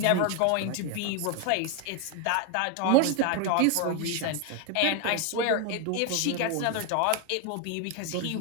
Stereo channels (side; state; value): both; different; correlation 0.01